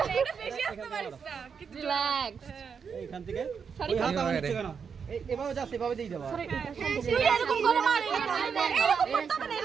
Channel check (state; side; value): quieter; left; 6.4 dB